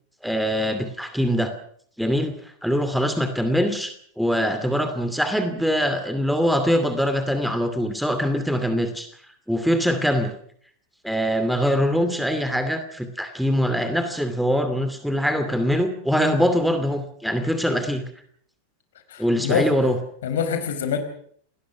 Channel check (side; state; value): both; normal; correlation 0.76